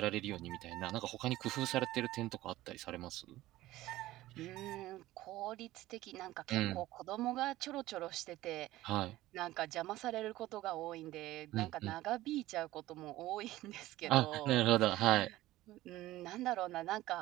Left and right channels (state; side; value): quieter; left; 16.4 dB